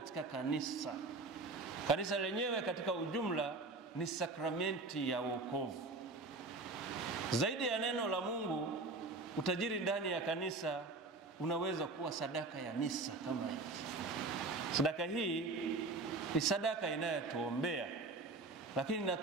kanisa. Kanisa lenyewe katika ujumla ni sakramenti ya wokovu. Zaidi ya neno la Mungu, utajiri ndani ya kanisa unaweza kuwa sadaka ya misa kama hii. Sadaka hii ni sadaka inayotuombea, lakini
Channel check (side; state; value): left; quieter; 3.4 dB